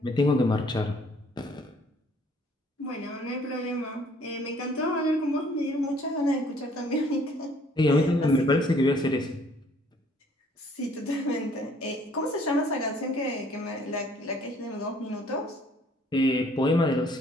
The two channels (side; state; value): both; normal; correlation 0.60